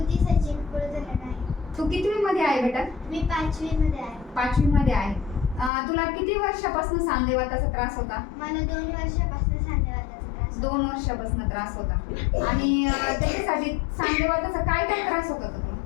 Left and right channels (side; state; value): right; drops out; at 5.7 s